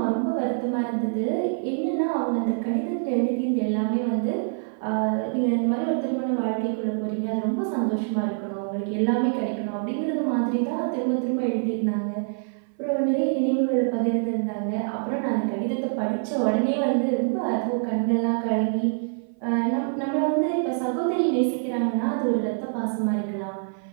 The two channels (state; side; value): silent; left; 58 dB below the other